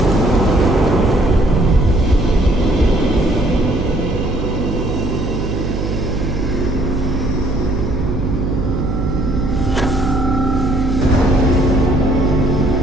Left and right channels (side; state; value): right; noise; hum, 3 dB below the sound